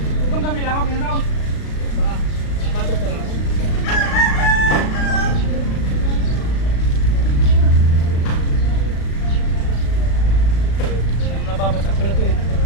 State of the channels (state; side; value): late; right; 36 ms